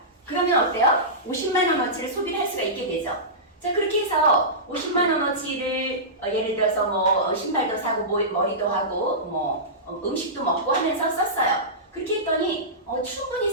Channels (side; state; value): both; normal; correlation -0.17